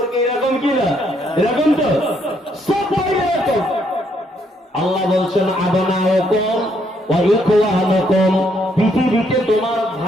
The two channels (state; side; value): normal; both; correlation 0.72